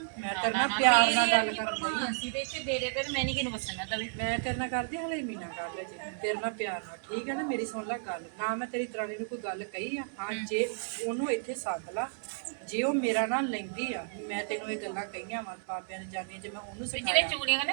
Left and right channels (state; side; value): silent; left; digital silence